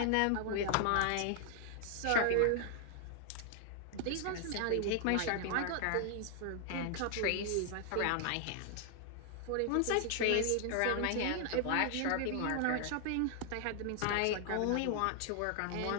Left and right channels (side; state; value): both; different; correlation 0.00